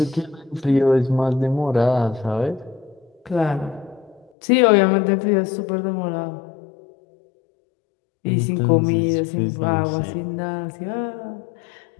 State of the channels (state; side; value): drops out; right; at 4.3 s